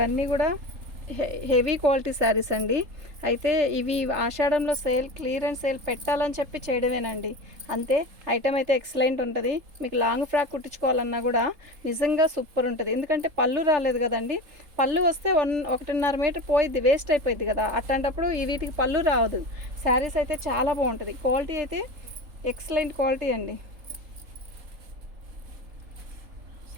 కూడా హెవీ క్వాలిటీ శారీస్ అండి. అయితే ఇవి ఆషాఢంలో క్లియరెన్స్ సేల్ పెట్టాలని చెప్పి చేయడమేనండి, అంతే. ఐటమ్ అయితే ఎక్సలెంట్ ఉంటుంది. మీకు లాంగ్ ఫ్రాక్ కుట్టించుకోవాలన్నా కూడా నిజంగా సూపర్ ఉంటుంది. ఎందుకంటే పళ్ళు రాలేదు కదండి. పళ్ళు వస్తే 1.5 మీటర్ పోయిద్ది, వేస్ట్ అయిపోయింది కదా. అట్లాంటప్పుడు వీటికి పళ్ళు రావదు. శారీస్ అయితే చాలా బాగుంటుంది. క్వాలిటీ అయితే ఎక్సలెంట్ క్వాలిటీ అండి.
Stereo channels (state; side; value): late; left; 3.7 ms